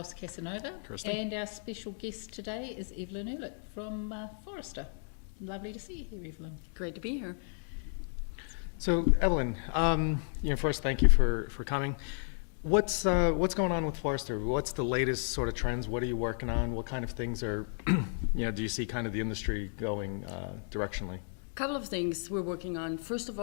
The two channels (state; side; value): silent; right; 56 dB below the other